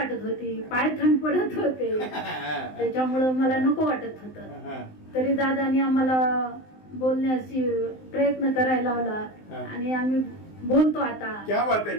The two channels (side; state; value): right; late; 19 ms